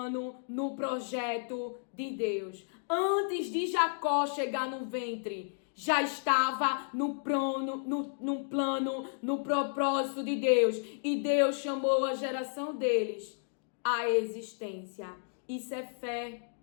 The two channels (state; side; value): silent; right; digital silence